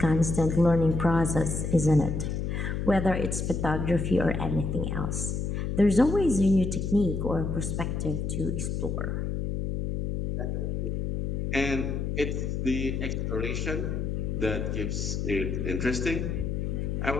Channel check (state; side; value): noise; left; hum, 1 dB below the sound